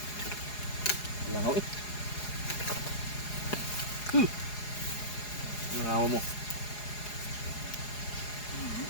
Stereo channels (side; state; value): right; late; 4.8 ms